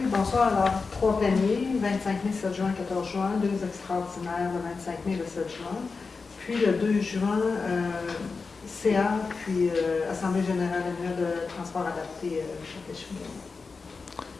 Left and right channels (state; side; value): quieter; right; 4.5 dB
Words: bonsoir. Alors, trois pléniers, 25 mai, 7 juin, 14 juin, deux extraordinaires, le 25 mai, le 7 juin. Puis le 2 juin, CA, puis Assemblée générale annuelle de transport adapté Chapelle-Chouinard.